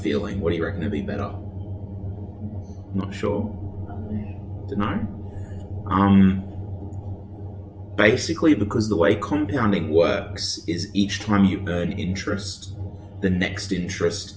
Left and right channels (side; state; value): both; identical; correlation 1.00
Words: What do you reckon would be better? Not sure. Don't know. Basically, because the way compounding works is each time you earn interest, the next interest